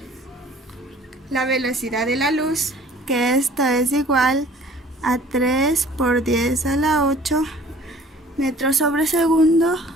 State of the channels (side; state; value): both; normal; correlation 0.51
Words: la velocidad de la luz, que esta es igual a 3 por 10 a la 8 metros sobre segundo,